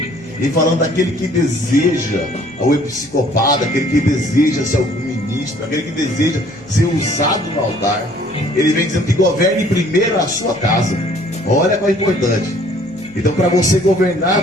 e falando daquele que deseja, o episcopado, aquele que deseja ser algum ministro, aquele que deseja ser usado no altar, ele vem dizendo que governe primeiro a sua casa. Olha qual é importante. Então, para você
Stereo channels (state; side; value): noise; left; hum, 24 dB below the sound